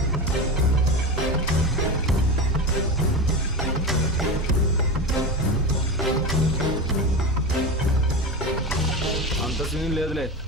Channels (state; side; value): normal; both; correlation 0.22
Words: అంత సీన్ లేదులే.